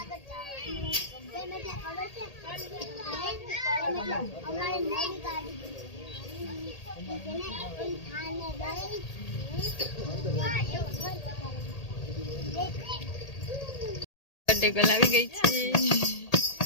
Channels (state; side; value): late; right; 1.8 ms